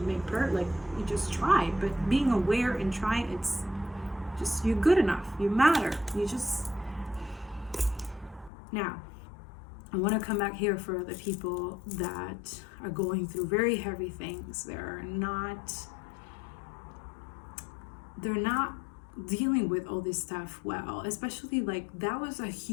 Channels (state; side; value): drops out; right; at 8.5 s